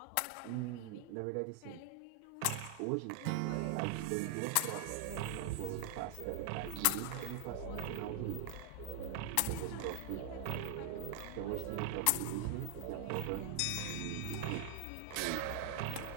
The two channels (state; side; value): different; both; correlation 0.00